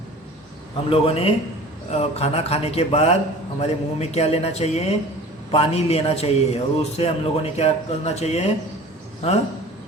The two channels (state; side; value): normal; both; correlation 0.42